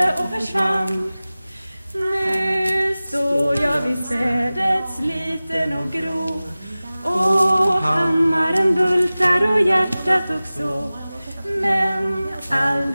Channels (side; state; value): both; inverted; correlation -0.98